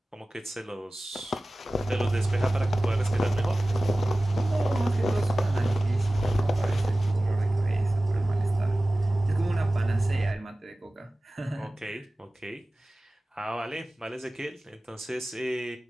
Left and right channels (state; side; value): normal; both; correlation 0.97